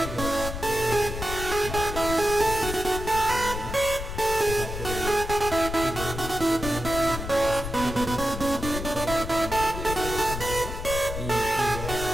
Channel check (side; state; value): left; noise; rumble, 6 dB below the sound